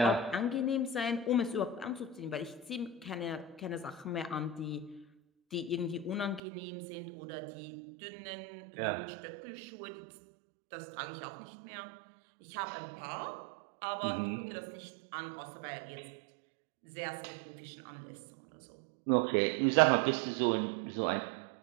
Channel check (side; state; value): left; drops out; at 6.4 s